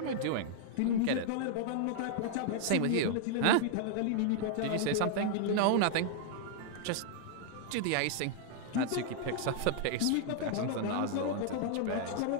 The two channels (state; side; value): different; both; correlation -0.01